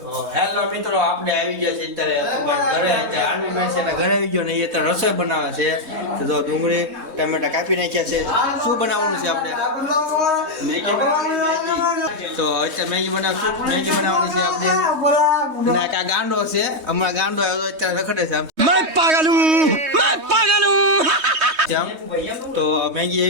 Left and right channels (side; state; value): left; late; 3.2 ms